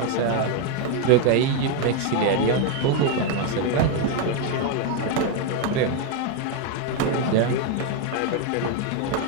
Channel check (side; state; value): both; different; correlation 0.01